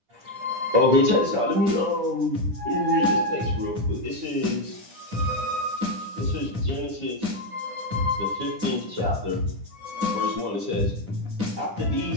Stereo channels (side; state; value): left; late; 10 ms